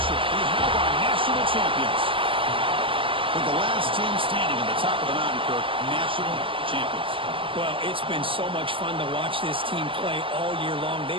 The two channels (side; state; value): left; late; 0.25 ms